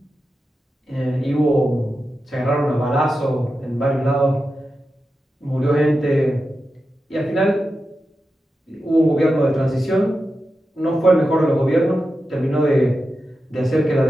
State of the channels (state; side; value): normal; both; correlation 0.90